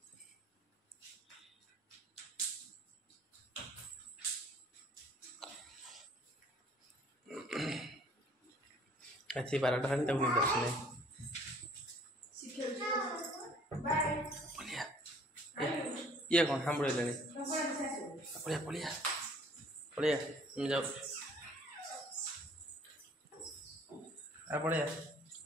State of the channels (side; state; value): both; normal; correlation 0.55